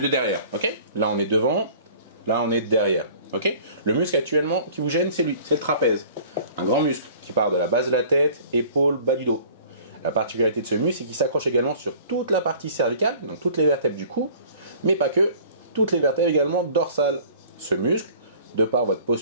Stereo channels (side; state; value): both; inverted; correlation -0.49